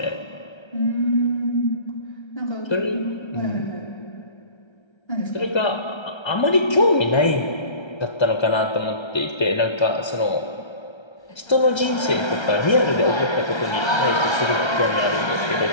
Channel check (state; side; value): late; right; 1.3 ms